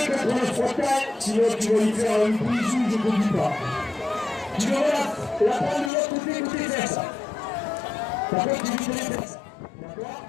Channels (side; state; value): right; drops out; at 5.9 s